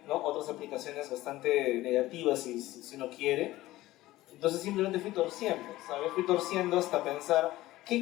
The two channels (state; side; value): quieter; right; 16.8 dB